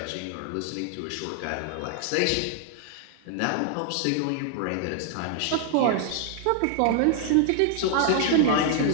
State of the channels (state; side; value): different; both; correlation 0.00